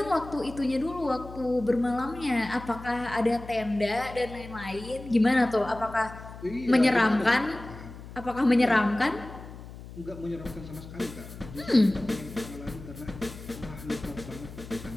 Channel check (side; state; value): left; noise; hum, 14 dB below the sound